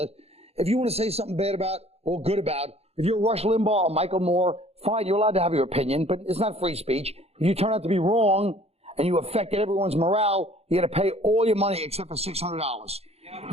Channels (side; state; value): left; late; 0.30 ms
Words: If you want to say something bad about or good about, if you're Rush Limbaugh or Michael Moore, fine, you're allowed to have your opinion, but it's not free speech. If you turn out to be wrong and you affected everyone's morale, you got to pay all your money except for $600.